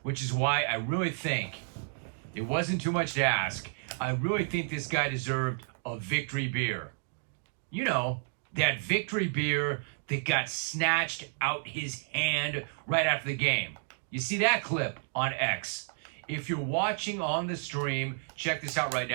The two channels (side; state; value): left; silent; digital silence